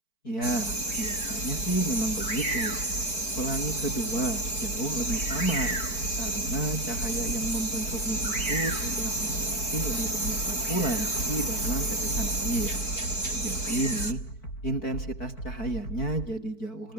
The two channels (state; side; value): late; right; 4.5 ms